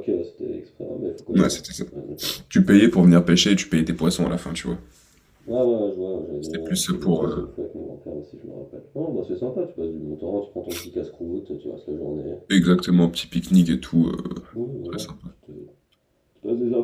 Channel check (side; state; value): both; identical; correlation 1.00